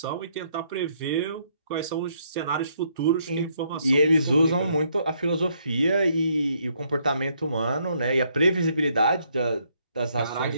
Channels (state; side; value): inverted; both; correlation -0.71